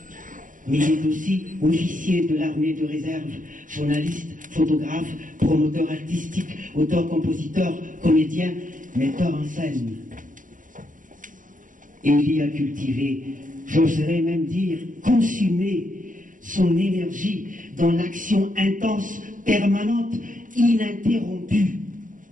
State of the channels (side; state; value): left; late; 0.38 ms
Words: mais il est aussi officier de l'armée de réserve, journaliste, photographe, promoteur artistique, auteur-compositeur, comédien, metteur en scène. Élie a cultivé, j'oserais même dire, consumé son énergie dans l'action intense, permanente, ininterrompue.